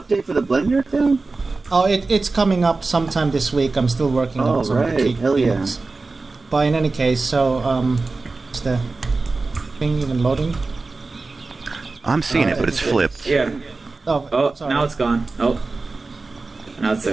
for the Blender thing. Oh, it's coming up sometime this week. I'm still working on some of the key things. But in any case, so is the thing even loading? I'm seeing it, but it's flipped. Yeah. Oh, sorry. Now it's gone. Oh, now it's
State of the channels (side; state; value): left; quieter; 3.7 dB